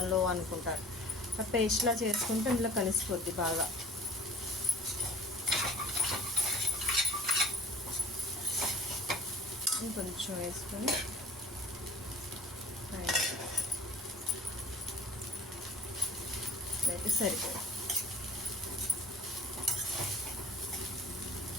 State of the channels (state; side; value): normal; both; correlation 0.45